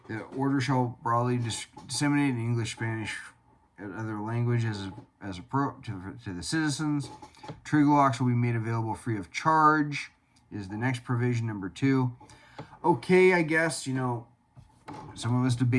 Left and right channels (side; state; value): both; identical; correlation 1.00